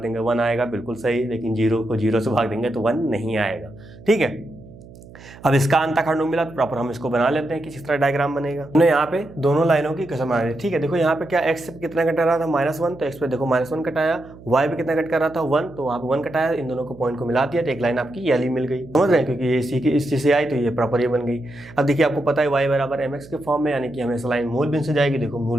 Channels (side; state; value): right; noise; hum, 19 dB below the sound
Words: देंगे 1 आएगा, बिल्कुल सही। लेकिन 0 को 0 से भाग देंगे तो 1 नहीं आएगा, ठीक है। अब इसका अंताखंड मिला तो प्रॉपर हम इसको बना लेते हैं कि किस तरह डायग्राम बनेगा। हमने यहाँ पे दोनों लाइनों की कसम आ रही है, ठीक है। देखो यहाँ पे क्या x पे कितना कट रहा था, -1, तो x पे देखो -1 कटाया, y पे कितना कट कर रहा था 1, तो वहाँ पे 1 कटाया, इन दोनों को पॉइंट को मिला दिया तो एक लाइन आपकी ये वाली मिल गई, समझ रहे हैं, क्योंकि ये इसी की इस चीज से आई तो ये प्रॉपर ये बन गई। अब देखिए आपको पता है y बराबर mx के फॉर्म में, यानी कि हमेशा लाइन मूल बिंदु से जाएगी, देखो